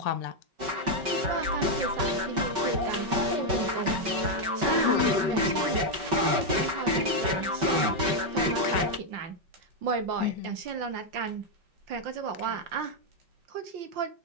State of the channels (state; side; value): late; left; 5.3 ms